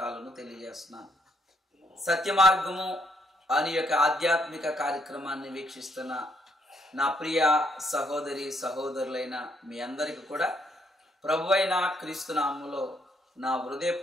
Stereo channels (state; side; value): normal; both; correlation 0.72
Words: తెలియజేస్తున్నాను. సత్యమార్గము అని యొక్క ఆధ్యాత్మిక కార్యక్రమాన్ని వీక్షిస్తున్న నా ప్రియ సహోదరి సహోదరులైన మీ అందరికీ కూడా ప్రభువైన క్రీస్తునామంలో నా